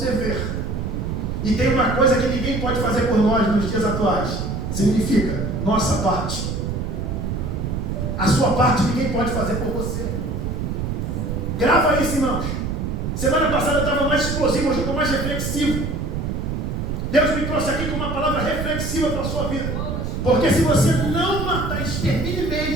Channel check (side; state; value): right; noise; rumble, 2 dB below the sound